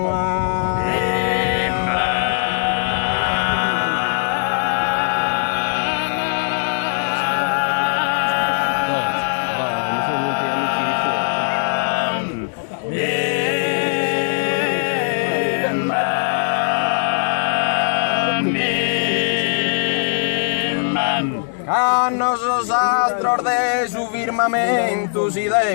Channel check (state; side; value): silent; right; 61 dB below the other